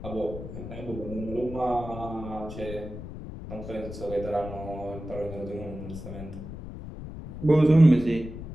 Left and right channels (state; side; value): noise; left; rumble, 10 dB below the sound